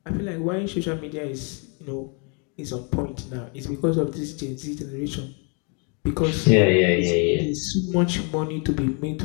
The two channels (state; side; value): quieter; right; 35.9 dB